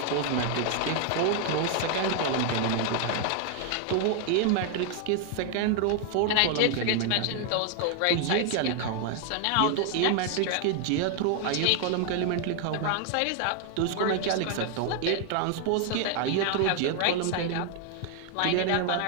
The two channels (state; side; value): different; both; correlation 0.00